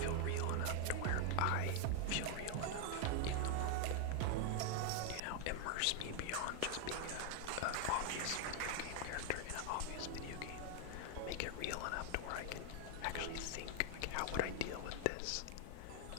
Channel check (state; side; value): different; both; correlation 0.01